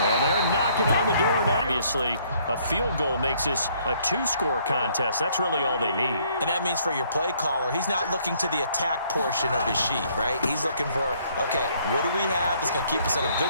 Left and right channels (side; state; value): both; inverted; correlation -0.65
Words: they're knocking on the door now. Obviously, a field goal makes this a 2-score contest. That's really all they need. And that means for your play caller, he's not looking to the attack portion of his sheet, right? He's looking for, okay, what do we have that's going to keep us in a